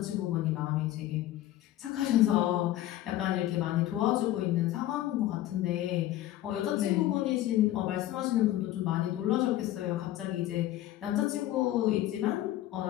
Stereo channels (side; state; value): right; quieter; 14.1 dB